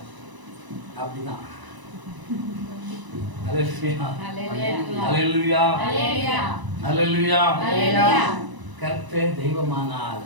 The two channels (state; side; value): late; left; 1.0 ms